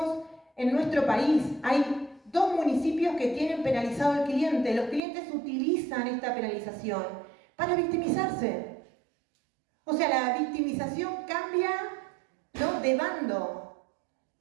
en nuestro país. Hay 2 municipios que tienen penalizado al cliente. Los clientes utilizan esta penalización para victimizarse. O sea, la victimización cambia, ¿no?, de bando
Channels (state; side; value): drops out; left; at 5.0 s